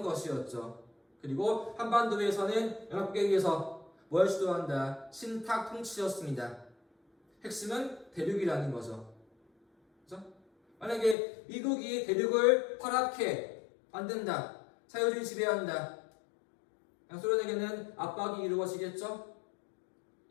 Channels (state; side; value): drops out; right; at 11.2 s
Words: 것이었죠. 그리고 한반도에서는 연합국에서 뭘 주도한다? 신탁 통치였습니다. 핵심은 대륙이라는 거죠. 그렇죠? 만약에 미국이 대륙을 파랗게 만든다, 자유주의 지배한다, 소련에게는 압박이 이루어지겠죠?